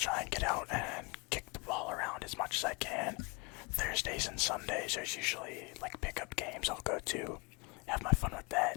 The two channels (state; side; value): quieter; right; 29.7 dB